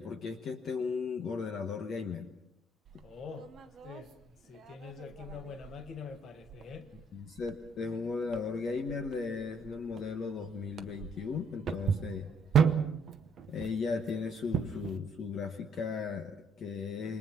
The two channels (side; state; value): both; normal; correlation 0.67